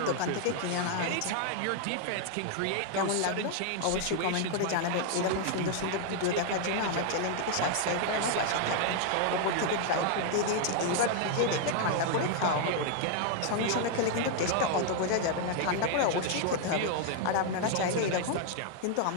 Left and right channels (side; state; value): both; different; correlation 0.00